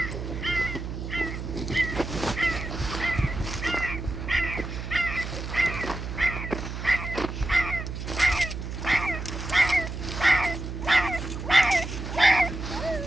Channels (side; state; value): right; noise; hum, 6 dB below the sound